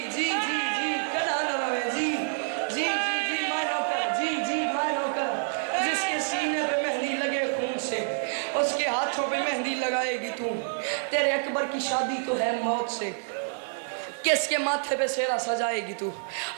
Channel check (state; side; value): silent; left; digital silence